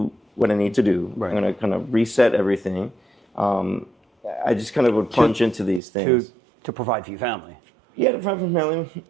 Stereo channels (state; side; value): drops out; left; at 5.8 s